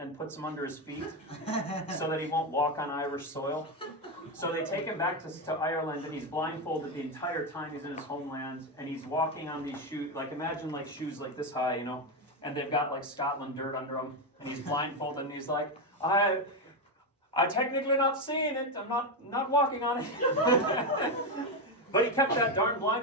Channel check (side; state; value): both; normal; correlation 0.09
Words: puts them under his feet so that he won't walk on Irish soil. So they take him back to Ireland, and he's blindfolded the entire time he's in his homeland, and he's walking on these shoes, like imagine like shoes like this high, and they've got like Scotland dirt under them, and he's blindfolded, and he's like, I technically not seeing it, I'm not walking on it. But he kept that darn